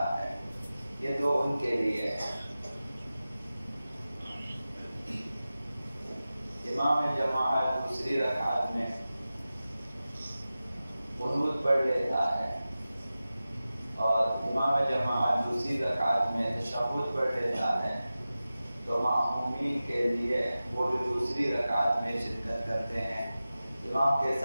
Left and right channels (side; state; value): both; inverted; correlation -0.95